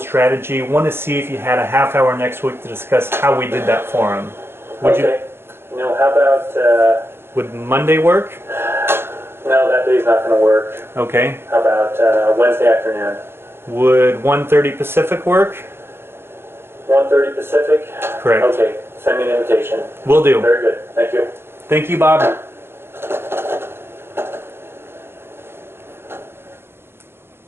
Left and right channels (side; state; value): left; late; 0.11 ms